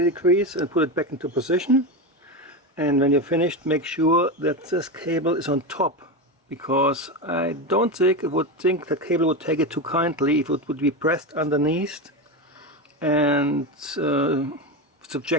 degrees and put it back into position. And when you're finished, make sure that this cable is on top, because I don't think that cable would take it too kindly if it would be pressed underneath and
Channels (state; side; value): normal; both; correlation 0.17